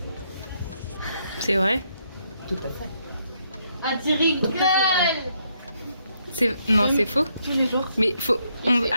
C'est vrai? Tout à fait. Ah, tu rigoles! Non, c'est faux. Tous les jours. Mais faut.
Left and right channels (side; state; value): both; inverted; correlation -0.75